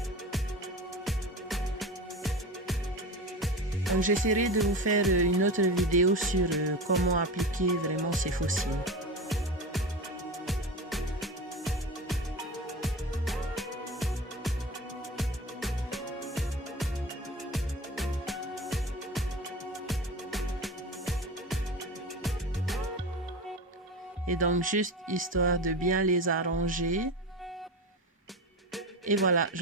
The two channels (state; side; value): normal; both; correlation 0.27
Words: Donc j'essaierai de vous faire une autre vidéo sur comment appliquer vraiment ces faux cils. Et donc juste histoire de bien les arranger. Et voilà,